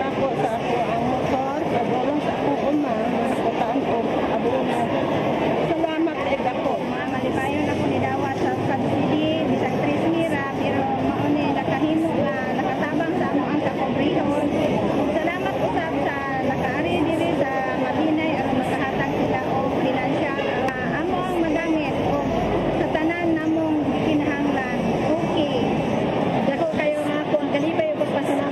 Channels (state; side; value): identical; both; correlation 1.00